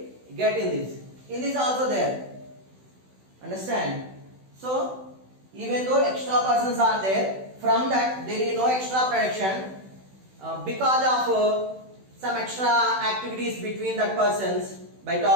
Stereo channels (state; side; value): late; left; 16 ms